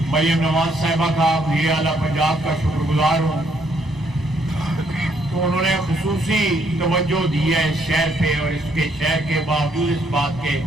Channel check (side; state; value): both; normal; correlation 0.70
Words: मरियम नवाज साहिबा का वज़ीर आला पंजाब का शुक्रगुजार हूँ। तो उन्होंने खुसूसी तवज्जो दी है इस शहर पे, और इसके शहर के बावजूद इस बात के